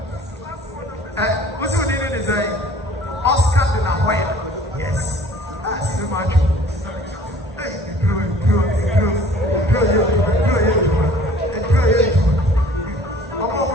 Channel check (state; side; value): normal; both; correlation 0.51